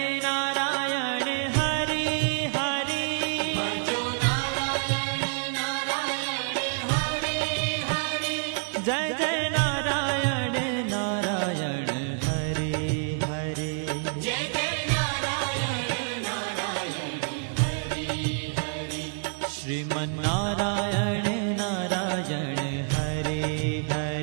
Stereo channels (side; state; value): left; silent; digital silence